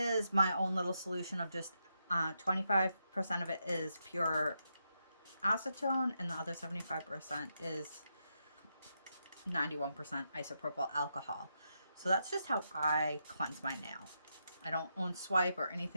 my own little solution of just 25% of it is pure acetone, and the other 75% is 91% isopropyl alcohol. So that's just how I cleanse my nail. I don't own Swipe or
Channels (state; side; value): inverted; both; correlation -0.83